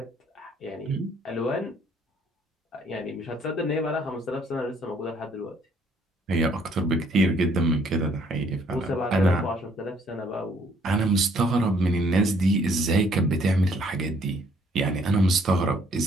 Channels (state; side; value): normal; both; correlation 0.64